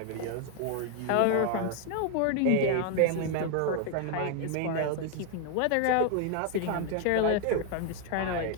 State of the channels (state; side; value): different; both; correlation 0.00